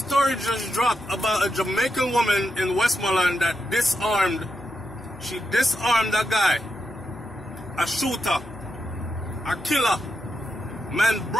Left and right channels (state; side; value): normal; both; correlation 0.86